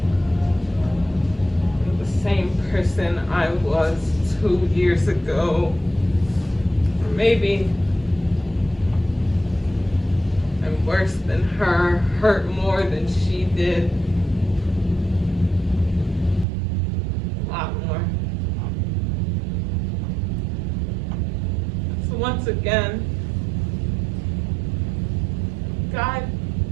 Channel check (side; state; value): left; drops out; at 16.4 s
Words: am the same person I was 2 years ago. Maybe I'm worse than her, hurt more than she did. A lot more. So once again, God,